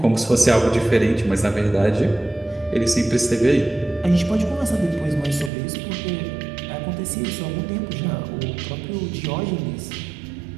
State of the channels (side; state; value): left; drops out; at 5.5 s